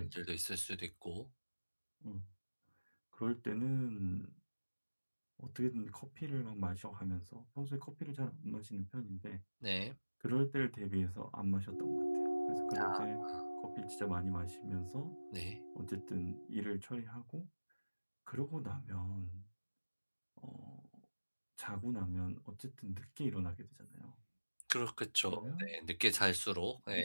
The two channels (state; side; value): inverted; both; correlation -1.00